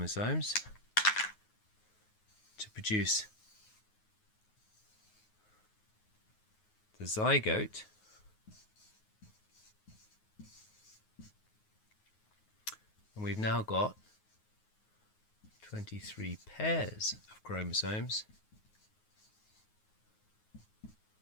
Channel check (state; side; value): late; right; 9.5 ms